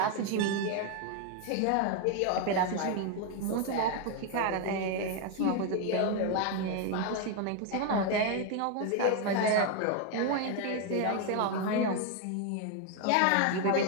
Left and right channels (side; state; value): both; different; correlation 0.01